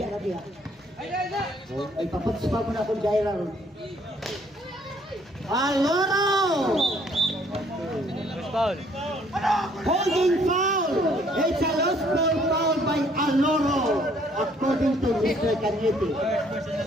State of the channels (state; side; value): normal; both; correlation 0.63